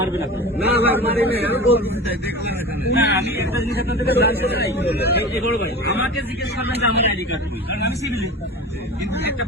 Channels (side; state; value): both; normal; correlation 0.33